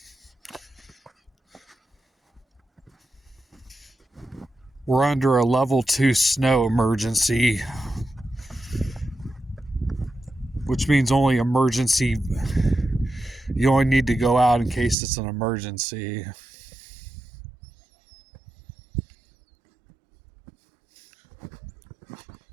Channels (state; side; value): drops out; left; at 15.0 s